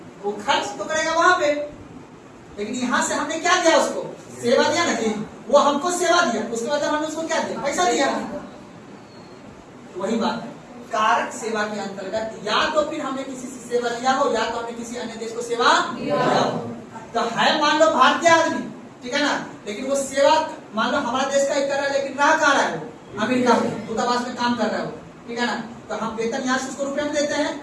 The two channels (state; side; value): identical; both; correlation 1.00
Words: वो खर्च तो करेगा वहां पे। लेकिन यहाँ से हमने क्या दिया उसको? सेवा दिया ना जी, वो हमको सेवा दिया, उसके बाद हमने उसको क्या दिया? पैसा दिया। वही बात है, कारक सेवा के अंतर्गत या तो फिर हमने किसी से सेवा लिया हो या तो हमने किसी अन्य देश को सेवा दिया हो। तो है मान लो भारतीय आदमी, ठीक है ना, लेकिन वो सेवा मान लो हमारा देश का ही कर रहा है, लेकिन रह कहाँ रहा है? वो अमेरिका में दूतावास में काम कर रहा है वो, ठीक है ना। तो हम वेतन यहाँ से उसको रुपए में देते हैं,